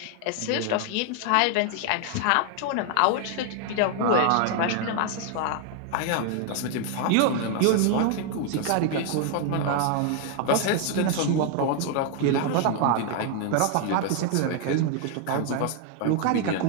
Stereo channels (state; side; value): different; both; correlation 0.00